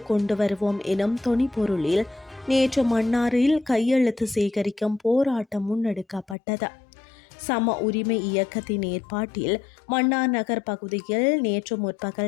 கொண்டு வருவோம் எனும் தொனிப்பொருளில் நேற்று மன்னாரில் கையெழுத்து சேகரிக்கும் போராட்டம் முன்னெடுக்கப்பட்டது. சம உரிமை இயக்கத்தின் ஏற்பாட்டில் மன்னார் நகர் பகுதியில் நேற்று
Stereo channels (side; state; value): right; drops out; at 6.4 s